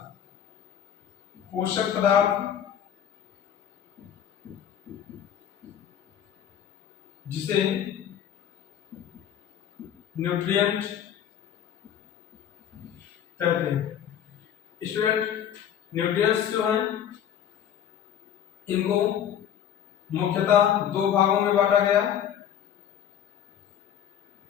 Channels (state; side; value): quieter; right; 9.5 dB